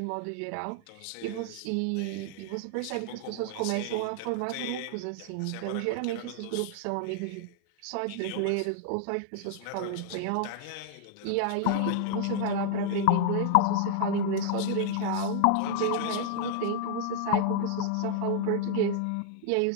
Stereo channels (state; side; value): different; both; correlation 0.00